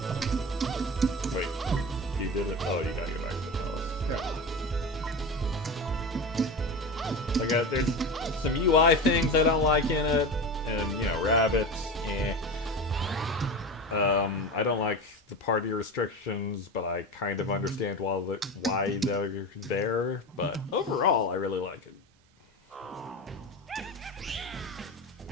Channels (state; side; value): normal; both; correlation 0.25